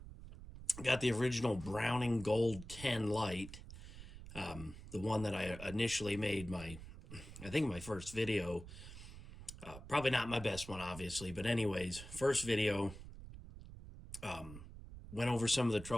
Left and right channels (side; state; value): right; noise; rumble, 13 dB below the sound